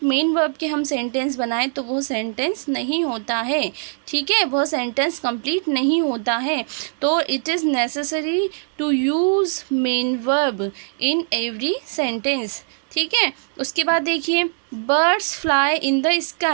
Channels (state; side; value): silent; left; digital silence